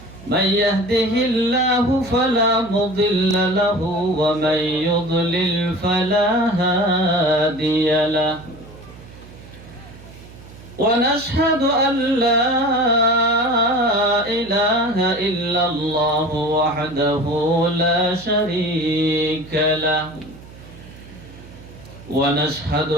من يهده الله فلا مضل له ومن يضلل فلا هادي له ونشهد أن لا إله إلا الله وحده لا شريك له ونشهد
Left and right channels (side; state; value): right; noise; hum, 19 dB below the sound